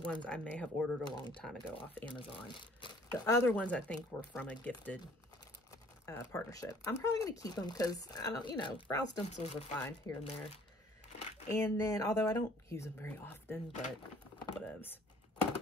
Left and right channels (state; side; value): normal; both; correlation 0.56